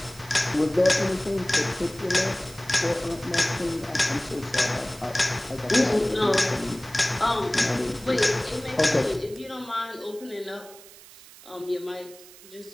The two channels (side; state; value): right; noise; hiss, 20 dB below the sound